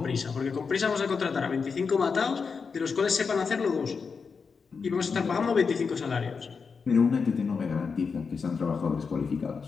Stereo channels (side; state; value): right; quieter; 5.4 dB